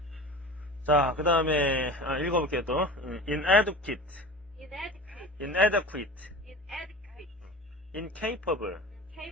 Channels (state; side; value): normal; both; correlation 0.35